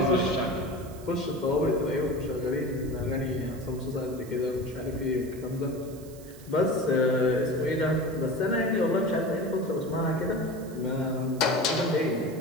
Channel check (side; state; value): right; noise; hiss, 21 dB below the sound